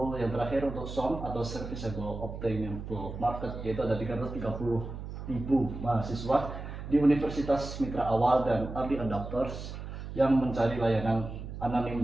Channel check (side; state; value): right; noise; hum, 9 dB below the sound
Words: yang terakhir untuk SOM atau Serviceable Obtainable Market, yaitu ada 330.000 mahasiswa di Universitas Mitra Awal dan early adopters yang mencari layanan